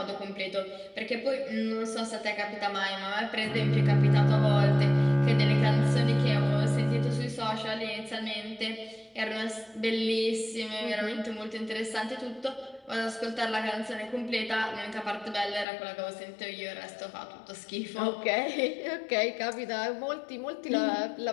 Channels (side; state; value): right; drops out; at 15.7 s